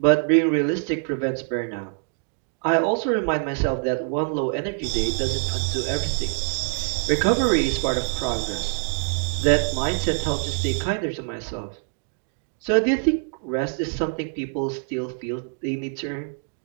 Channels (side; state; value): left; silent; 62 dB below the other